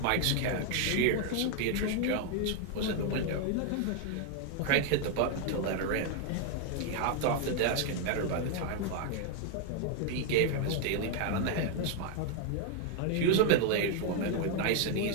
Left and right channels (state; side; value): different; both; correlation 0.00